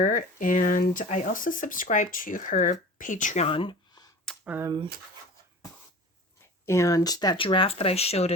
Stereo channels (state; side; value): normal; both; correlation 0.38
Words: and I also subscribe to her Patreon. And that giraffe that I showed